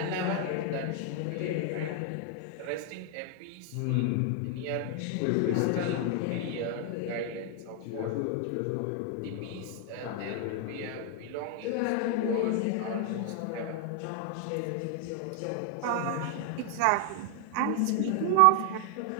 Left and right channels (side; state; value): both; different; correlation 0.00